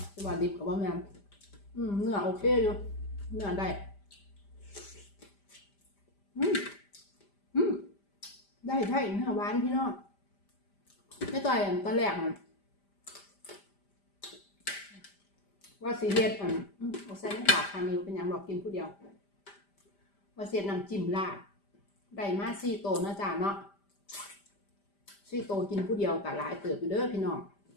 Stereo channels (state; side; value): late; right; 5.0 ms